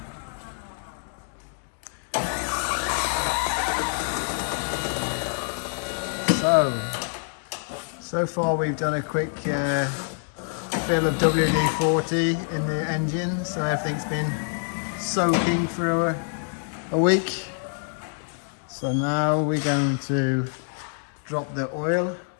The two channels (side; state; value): right; silent; 61 dB below the other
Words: So far we've done a quick fill of WD-40 in the engine, so everything's been soaking for a week. So now we're going to drop the oil,